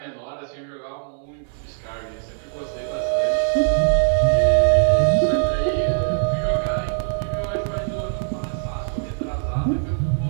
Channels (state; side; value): silent; left; digital silence